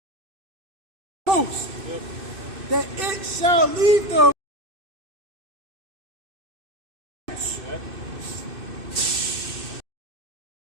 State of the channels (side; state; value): left; late; 2.6 ms